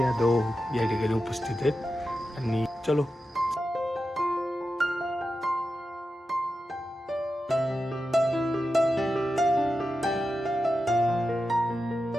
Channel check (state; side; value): normal; both; correlation 0.90